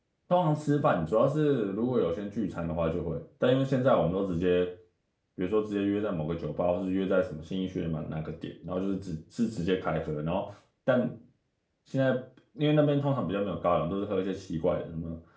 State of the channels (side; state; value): both; identical; correlation 1.00